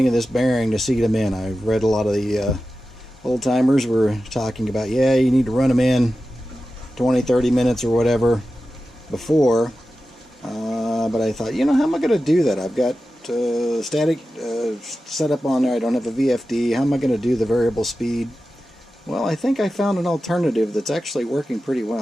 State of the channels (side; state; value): both; normal; correlation 0.93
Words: of this bearing to seat them in. I've read a lot of the old timers were talking about, yeah, you need to run them in 20-30 minutes or whatever before, but I thought, how am I going to do that? I've got static set up on there. I don't have a VFD. How am I going to do the variable speed? Well, I think I found an alternative that's actually working pretty